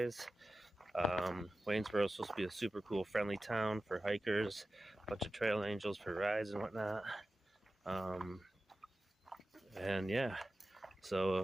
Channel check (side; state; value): both; normal; correlation 0.94